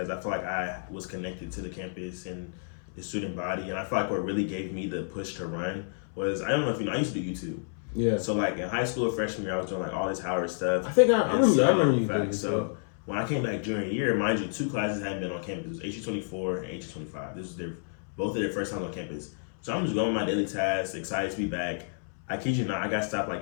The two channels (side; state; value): right; silent; 58 dB below the other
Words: I feel like I was connected to the campus and the student body. And I feel like what really gave me the push to run was, I don't know if you know, I used to do YouTube. Yeah. So like in high school or freshman year, I was doing like all this Howard stuff. I think I remember you doing so when I came back junior year, mind you, 2 classes hadn't been on campus. It was HE24 and HE25. This was both of their first time on campus. So I'm just going with my daily tasks, excited to be back. I kid you not, I got stopped